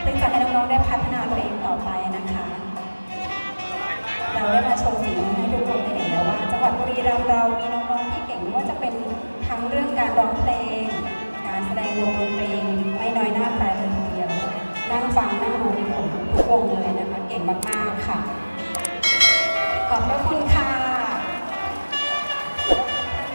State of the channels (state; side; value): inverted; both; correlation -1.00